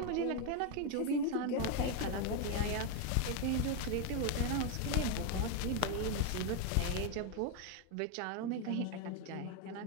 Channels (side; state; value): both; different; correlation 0.01